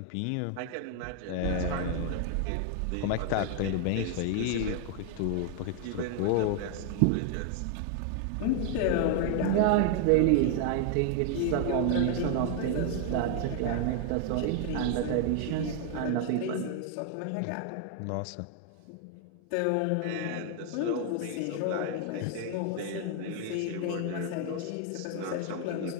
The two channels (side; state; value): both; different; correlation 0.00